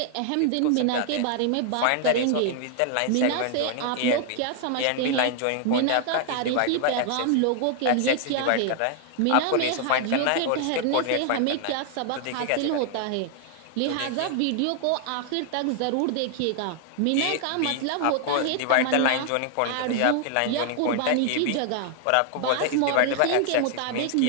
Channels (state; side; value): different; both; correlation 0.00